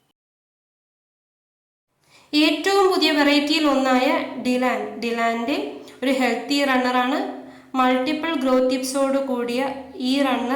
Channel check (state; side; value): identical; both; correlation 1.00